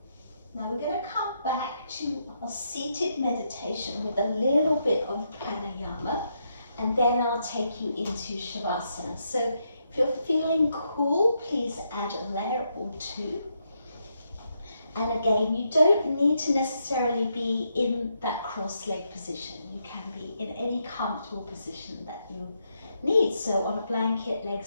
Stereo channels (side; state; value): both; inverted; correlation -0.80